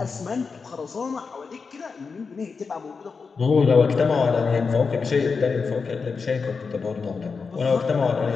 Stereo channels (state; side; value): quieter; right; 5.0 dB